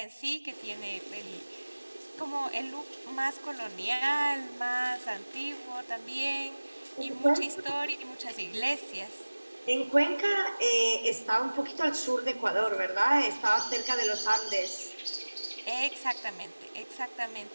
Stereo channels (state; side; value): inverted; both; correlation -1.00